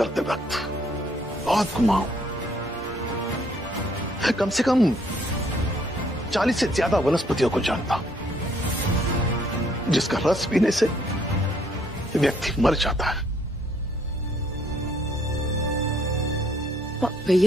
वक्त बहुत घुमा हूं। कम से कम 40 से ज्यादा वनस्पतियों को जानता हूं जिसका रस पीने से व्यक्ति मर जाता है।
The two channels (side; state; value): both; normal; correlation 0.65